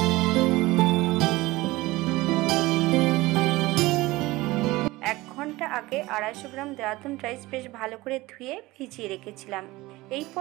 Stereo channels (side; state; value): left; quieter; 19.8 dB